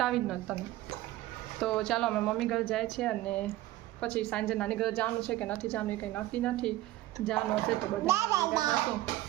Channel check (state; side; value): quieter; left; 16.2 dB